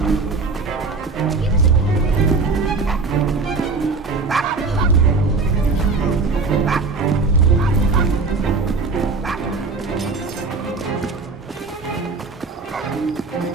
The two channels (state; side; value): quieter; left; 4.2 dB